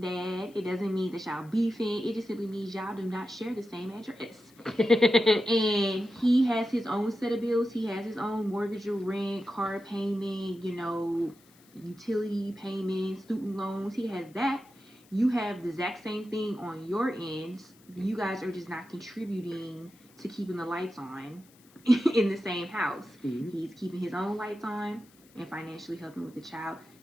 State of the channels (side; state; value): left; noise; hiss, 28 dB below the sound